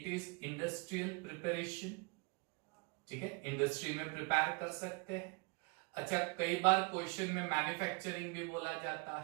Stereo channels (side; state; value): left; quieter; 31.0 dB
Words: इज इंडस्ट्रियल प्रिपरेशन, ठीक है। इंडस्ट्री में प्रिपेयर कर सकते हैं। अच्छा, कई बार क्वेश्चन में मैन्युफैक्चरिंग भी बोला जाता